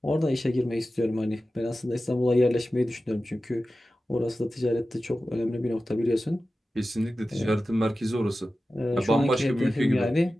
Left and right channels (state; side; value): normal; both; correlation 0.94